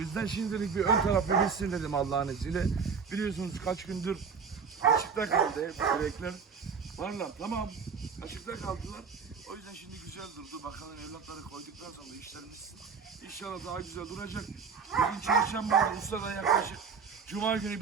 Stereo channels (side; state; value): left; quieter; 5.9 dB